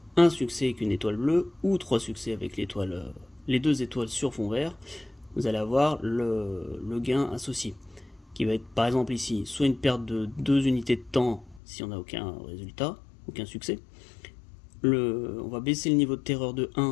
un succès avec une étoile bleue ou 3 succès avec les 2 étoiles sur fond vert, vous allez avoir le gain associé, qui va être par exemple ici, soit une perte de 2 unités de temps si on n'a aucun résultat, aucun succès. On va baisser le niveau de terreur de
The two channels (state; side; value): drops out; right; at 11.6 s